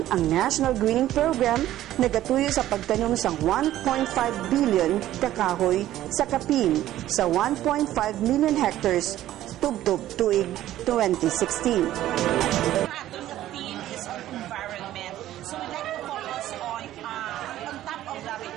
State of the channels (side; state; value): left; quieter; 13.6 dB